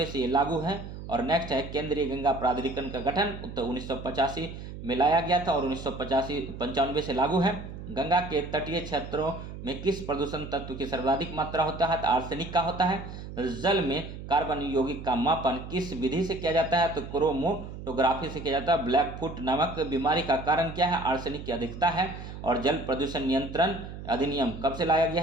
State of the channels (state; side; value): noise; right; hum, 11 dB below the sound